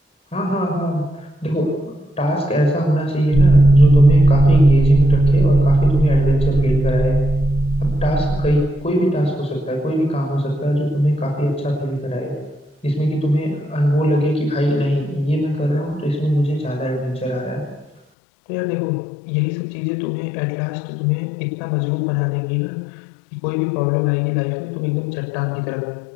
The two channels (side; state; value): right; drops out; at 18.0 s